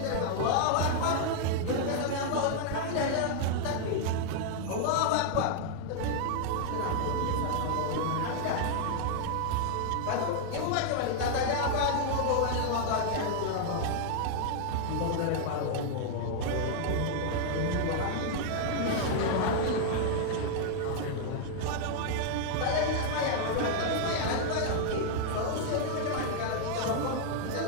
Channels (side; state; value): both; different; correlation 0.00